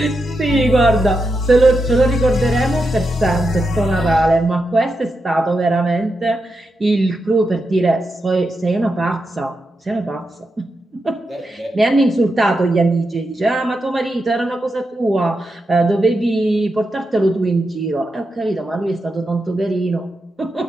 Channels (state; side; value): normal; both; correlation 0.86